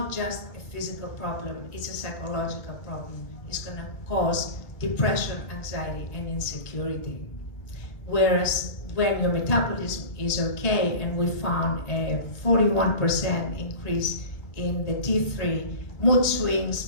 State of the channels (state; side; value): late; right; 1.6 ms